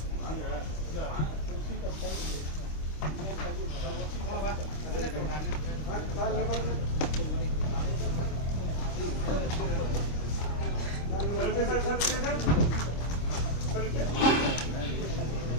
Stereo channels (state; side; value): late; right; 26 ms